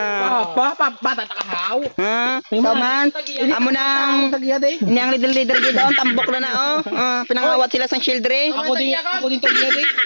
Bata takahaw. Taman. Amo nang Tagiya de. niyang leader gid doon tambok na oh. Pinangawat sila sang shield diri. Ako din tagiya de.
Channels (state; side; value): inverted; both; correlation -1.00